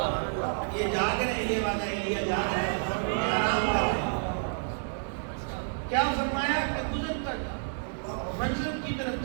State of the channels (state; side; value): silent; left; 58 dB below the other